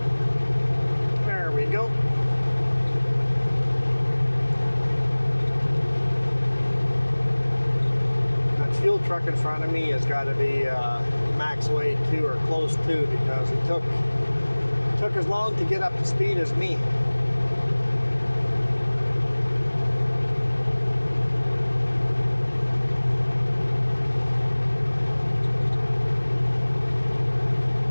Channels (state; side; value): inverted; both; correlation -1.00